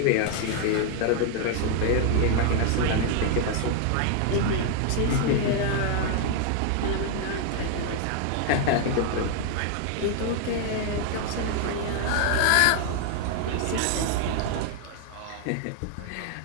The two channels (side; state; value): both; different; correlation 0.00